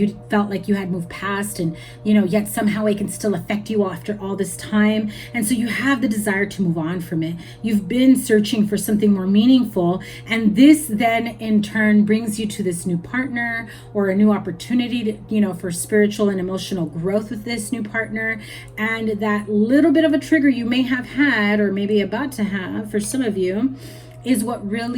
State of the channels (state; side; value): identical; both; correlation 1.00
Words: felt like you had moved past, and, you know, yet somehow it can still affect you after all this time. And so you have the desire to move on from it. You've been searching for something more meaningful. And this then in turn brings you to this new partner or a new opportunity to, you know, for spiritual and emotional growth with this new partner. And that little bit of a trigger you may have had, or maybe about to have for some of you, is what